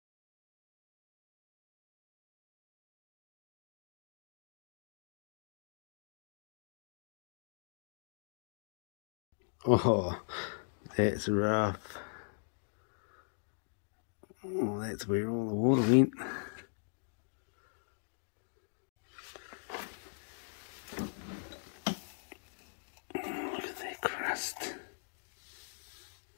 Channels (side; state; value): right; silent; digital silence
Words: all. Oh, that's rough. Oh, that's where all the water went. Look at that crust.